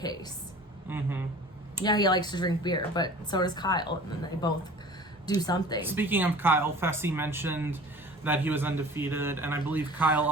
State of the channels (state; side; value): normal; both; correlation 0.44